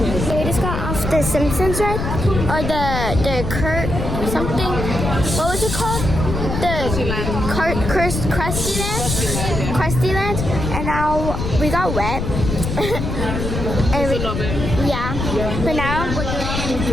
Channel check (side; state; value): left; noise; rumble, 3 dB below the sound